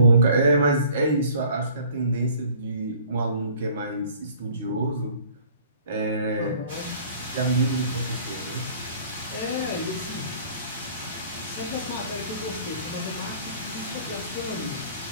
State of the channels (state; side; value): inverted; both; correlation -0.52